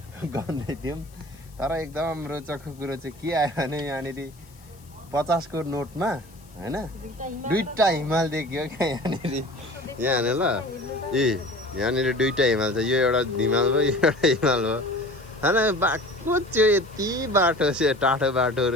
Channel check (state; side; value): noise; left; hiss, 27 dB below the sound